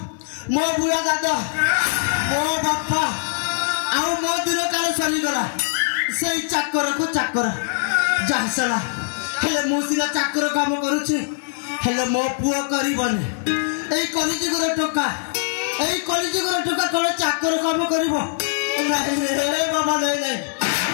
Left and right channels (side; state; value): right; silent; 64 dB below the other